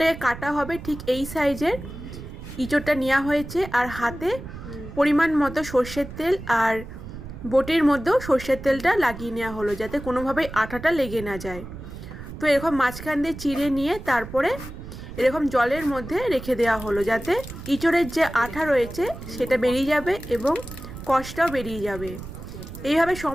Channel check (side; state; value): right; noise; rumble, 12 dB below the sound